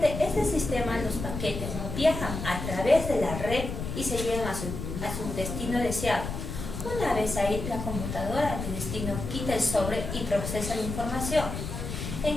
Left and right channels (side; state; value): left; noise; rumble, 6 dB below the sound